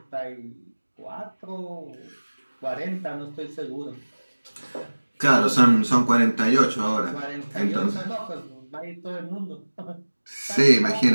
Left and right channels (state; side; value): inverted; both; correlation -1.00